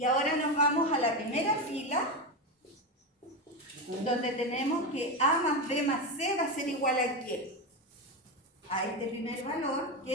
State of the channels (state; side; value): normal; both; correlation 0.14